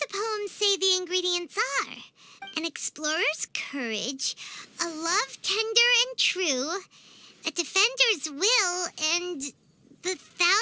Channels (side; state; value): both; identical; correlation 1.00